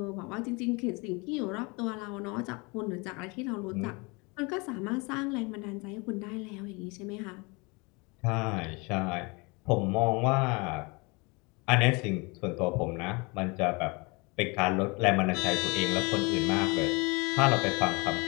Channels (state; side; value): quieter; right; 28.3 dB